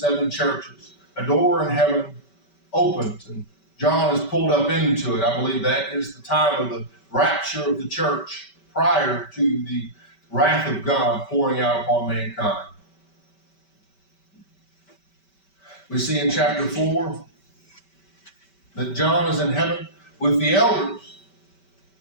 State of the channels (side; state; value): right; late; 5.2 ms